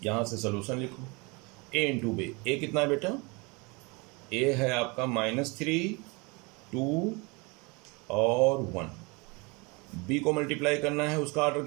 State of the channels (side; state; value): left; quieter; 28.2 dB